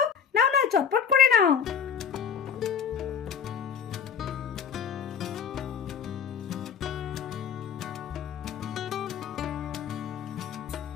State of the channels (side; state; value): right; quieter; 7.2 dB